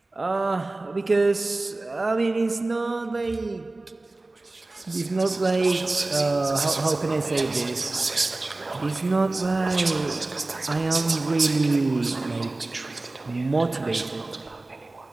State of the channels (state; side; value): quieter; left; 3.0 dB